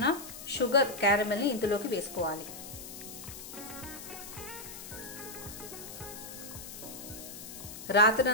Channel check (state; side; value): noise; left; hiss, 12 dB below the sound